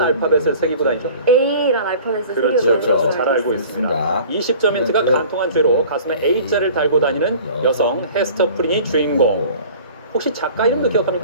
새기고 다니죠? A란 알파벳을 그렇죠. 새기고 그렇죠. 잘 알고 있습니다. 20점 힌트가 간통한 죄로 가슴에 A자를 달고 다니는 여성 헤스터 프린이 주인공. 혹시 작가 이름도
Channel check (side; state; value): both; inverted; correlation -0.45